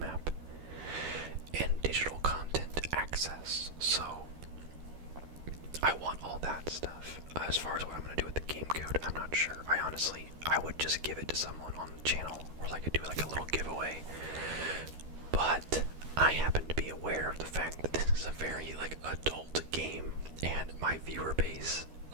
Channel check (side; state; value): left; late; 13 ms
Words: and digital content access. So I want all that stuff. As far as what I'm going to do with the game code, I'm not sure. I would just give it to someone on the channel, or do like a little giveaway. But I happen to be aware of the fact that this is a very adult game, and my viewer base,